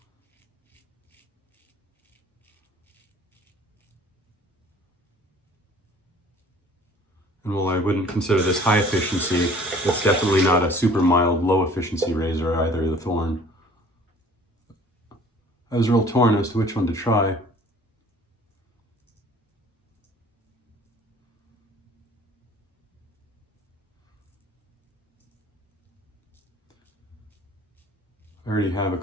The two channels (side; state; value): both; normal; correlation 0.51